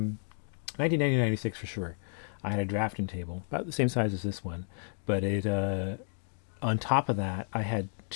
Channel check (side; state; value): right; silent; 57 dB below the other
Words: 1990 to 96 for sure, I had a drafting table about the same size as this one, but it on top of that I had